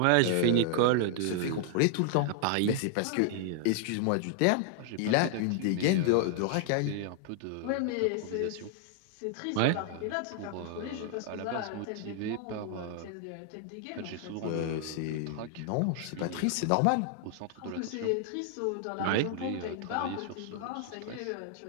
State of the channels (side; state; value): both; different; correlation 0.00